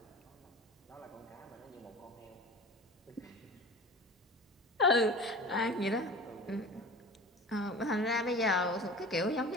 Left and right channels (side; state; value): both; normal; correlation 0.36